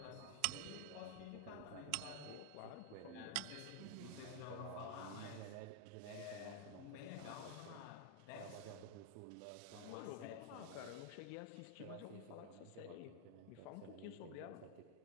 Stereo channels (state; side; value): different; both; correlation 0.00